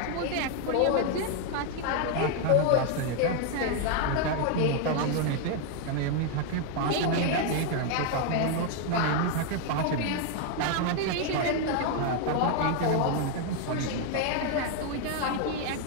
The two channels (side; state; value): both; different; correlation 0.00